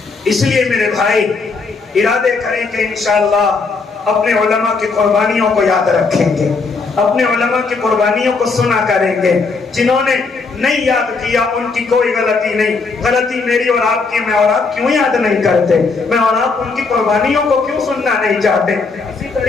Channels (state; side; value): quieter; right; 4.3 dB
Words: اس لیے میرے بھائی ارادے کریں کہ انشاءاللہ اپنے علماء کی قربانیوں کو یاد رکھیں گے, اپنے علماء کی قربانیوں کو سنا کریں گے. جنہوں نے نہیں یاد کیا ان کی کوئی غلطی نہیں, غلطی میری اور آپ کی. میں اور آپ کیوں یاد نہیں کرتے, میں اور آپ ان کی قربانیوں کو کیوں سننا نہیں چاہتے. اسی